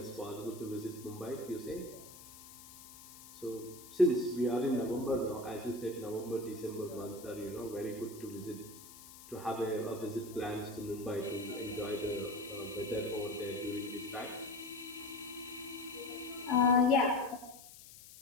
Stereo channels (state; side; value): noise; left; hiss, 17 dB below the sound